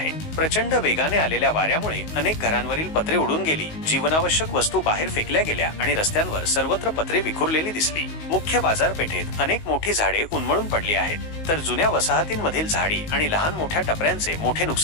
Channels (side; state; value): right; late; 19 ms